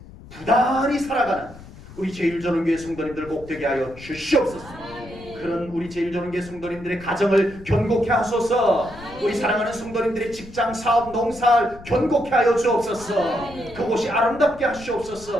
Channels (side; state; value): left; noise; rumble, 18 dB below the sound